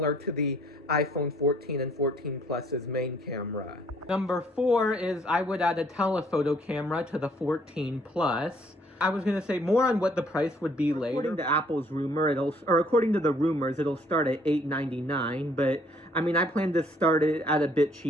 to the iPhone 14 and 14 Plus's main camera. Number four is I would add a telephoto camera to the 14 Plus. I was going to say more on what the price would be later. According to Apple's rumor, according to the rumors, it'll start at $899, but I mean, I plan to start it at a bit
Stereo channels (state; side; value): normal; both; correlation 0.62